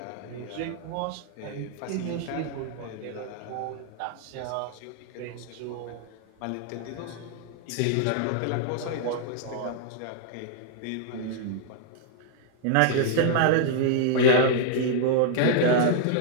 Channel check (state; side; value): different; both; correlation -0.01